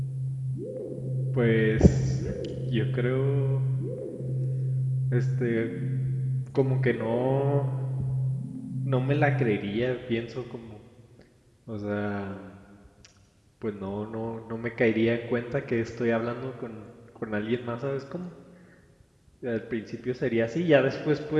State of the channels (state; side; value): identical; both; correlation 1.00